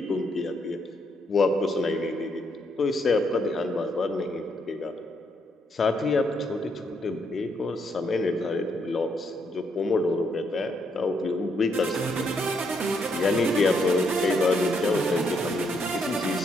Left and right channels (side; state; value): both; normal; correlation 0.75